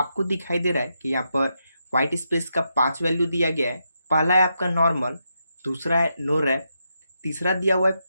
दिखाई दे रहा है कि यहाँ पर वाइट स्पेस का 5 वैल्यू दिया गया है। पहला है आपका नॉर्मल, दूसरा है नो रैप, तीसरा दिया हुआ है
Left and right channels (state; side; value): inverted; both; correlation -0.83